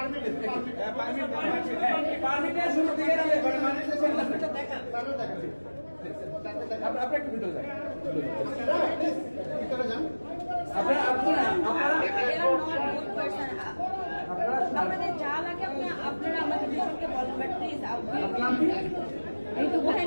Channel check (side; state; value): both; inverted; correlation -1.00